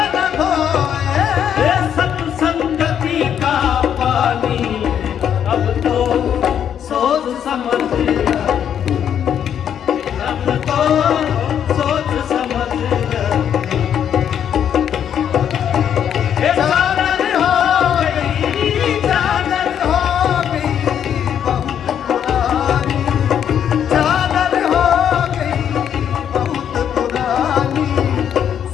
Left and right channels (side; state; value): right; quieter; 9.0 dB